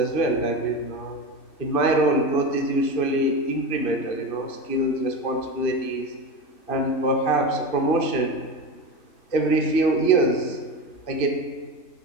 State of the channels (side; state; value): right; late; 2.6 ms